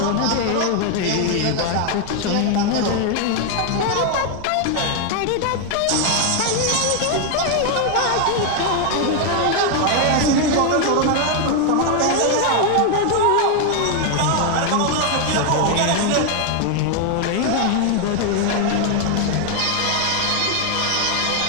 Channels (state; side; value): different; both; correlation 0.00